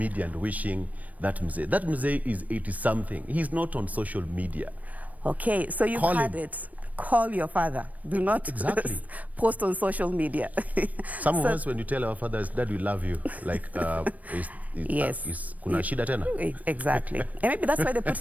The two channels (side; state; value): left; late; 0.072 ms